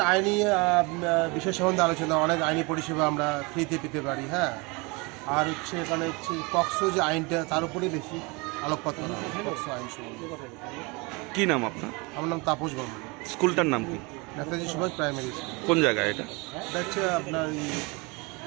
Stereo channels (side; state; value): left; quieter; 27.5 dB